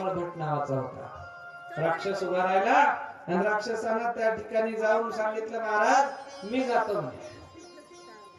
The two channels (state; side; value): identical; both; correlation 1.00